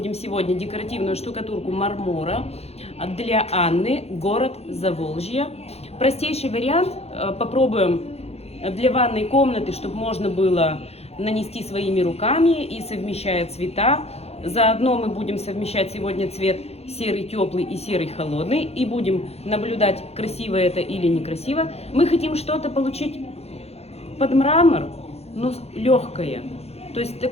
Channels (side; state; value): right; late; 0.30 ms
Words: сегодня декоративную штукатурку мармора для Анны, город Заволжье. Простейший вариант. Попробуем для ванной комнаты, чтобы можно было нанести своими руками и совмещая цвета. Заодно мы будем совмещать сегодня цвет серый теплый и серый холодный. И будем наблюдать, красиво это или некрасиво. Мы хотим что-то получить под мрамор, но легкое. То есть